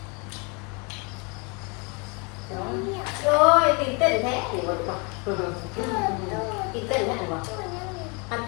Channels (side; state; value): right; quieter; 31.9 dB